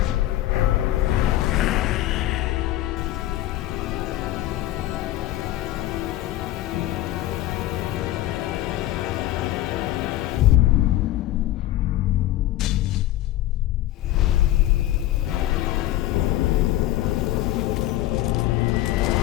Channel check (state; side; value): quieter; right; 14.7 dB